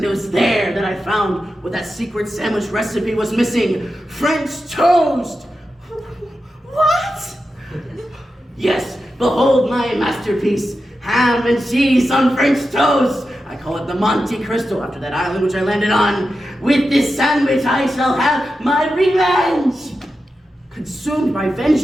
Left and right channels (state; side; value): normal; both; correlation 0.90